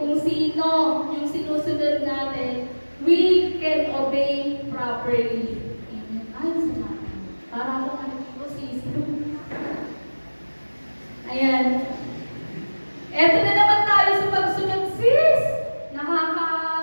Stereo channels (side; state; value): both; inverted; correlation -1.00